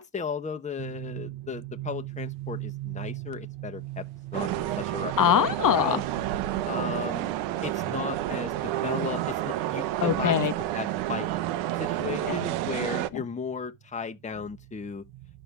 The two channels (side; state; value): both; normal; correlation 0.07